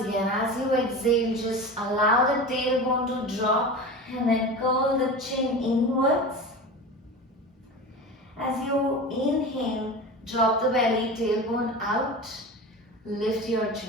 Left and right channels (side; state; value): both; normal; correlation 0.30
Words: as you exhale, just allow the tailbone to drop and then curl the chin inwards. As you inhale, drop the belly, tailbone out, lift your